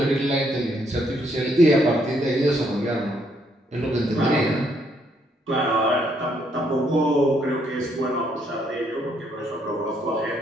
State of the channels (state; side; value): normal; both; correlation 0.71